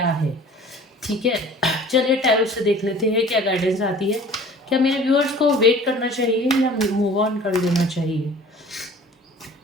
है, ठीक है। चलिए टैरो से देख लेते हैं क्या गाइडेंस आती है। क्या मेरे व्यूअर्स को वेट करना चाहिए या मूव ऑन कर देना चाहिए?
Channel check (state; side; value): normal; both; correlation 0.46